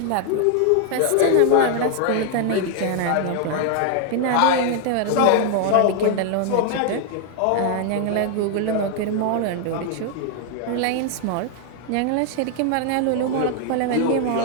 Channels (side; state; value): both; different; correlation 0.00